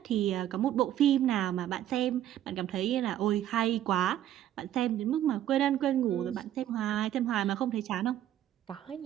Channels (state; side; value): quieter; left; 11.9 dB